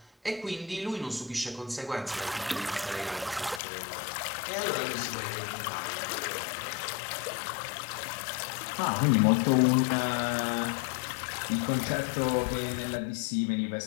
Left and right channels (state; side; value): drops out; right; at 3.6 s